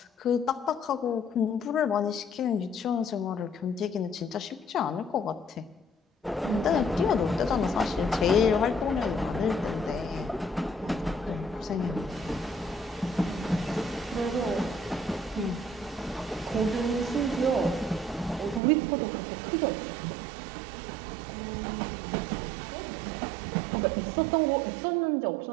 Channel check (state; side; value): drops out; left; at 18.6 s